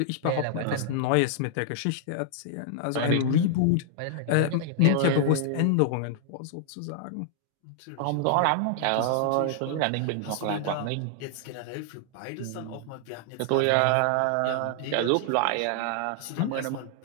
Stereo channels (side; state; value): both; different; correlation -0.01